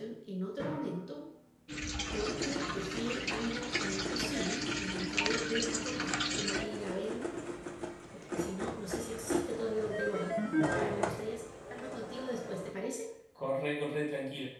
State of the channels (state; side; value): identical; both; correlation 1.00